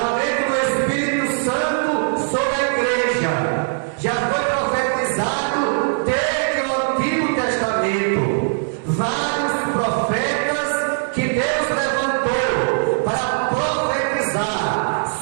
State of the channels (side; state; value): left; silent; 65 dB below the other